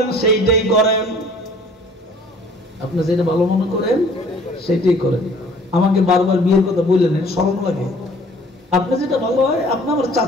সেইটাই করেন, আপনি যেটা ভালো মনে করেন সেটাই করেন। আমাকে বারবার বিয়ের কথা বললেন, শরম লাগে। আপনি যেটা ভালো হয়, আপনি আমার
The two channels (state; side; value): normal; both; correlation 0.54